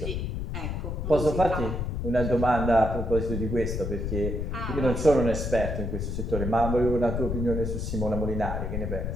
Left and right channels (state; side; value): noise; left; rumble, 3 dB below the sound